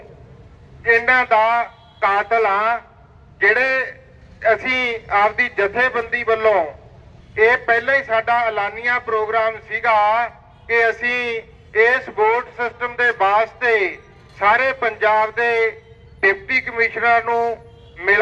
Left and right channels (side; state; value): both; identical; correlation 1.00